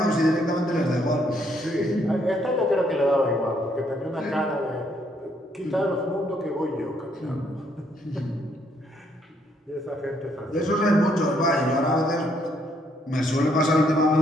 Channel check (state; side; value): normal; both; correlation 0.71